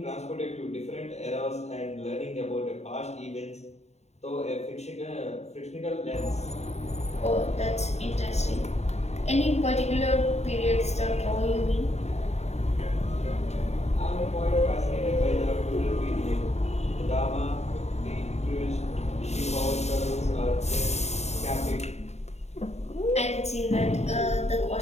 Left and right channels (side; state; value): right; late; 0.32 ms